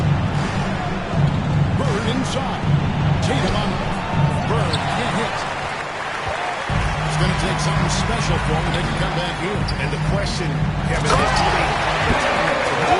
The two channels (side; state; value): both; identical; correlation 1.00